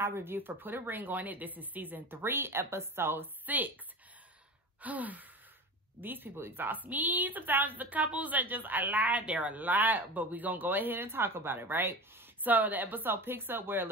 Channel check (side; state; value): both; normal; correlation 0.32